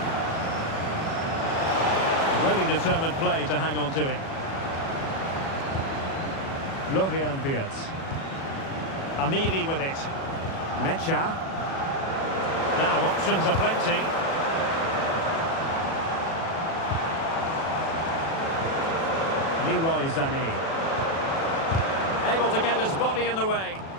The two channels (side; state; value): right; late; 37 ms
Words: Really determined play to hang on to it. Florian Wirtz. Amiri with it. Mecha. Now options are plenty. Leroy Sané. Able to get his body in the way.